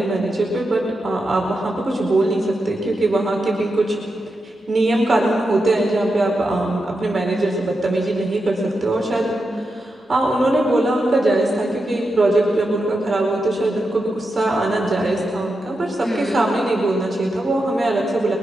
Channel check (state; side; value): normal; both; correlation 0.87